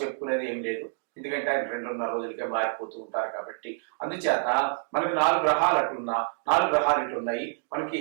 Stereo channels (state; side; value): silent; left; digital silence